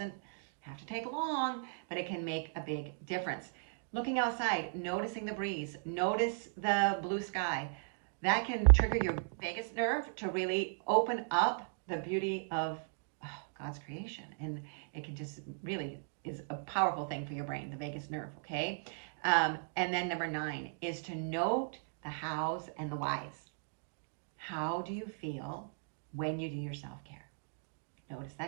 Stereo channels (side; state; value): left; silent; digital silence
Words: have to take long, but it can make a big difference. Looking outside, noticing the breeze, notice the blue sky. That can trigger your vagus nerve to really open up the beauty of God's creation. And it can just really is a powerful thing for your brain, the vagus nerve, okay? And then number 9 is to note the hows and the whys. How do you feel when you do your self-care? Notice